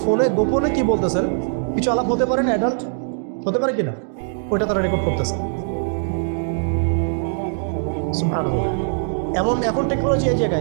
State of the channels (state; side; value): silent; left; digital silence